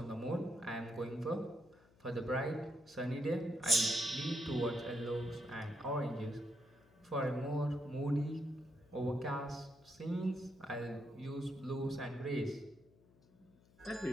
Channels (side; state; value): left; noise; hum, 28 dB below the sound